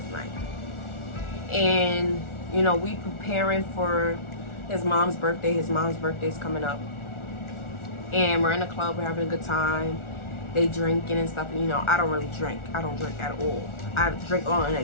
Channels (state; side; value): late; right; 1.4 ms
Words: night. And, you know, we preparing for his mom's birthday. His mom's birthday is coming up. And we're in the club. We're having a good time. They drinking and stuff. And, you know, I don't really drink. I don't drink at all. I drink on an